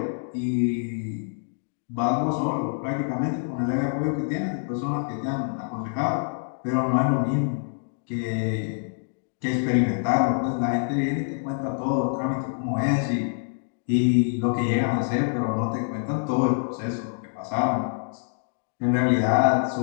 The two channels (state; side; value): silent; right; digital silence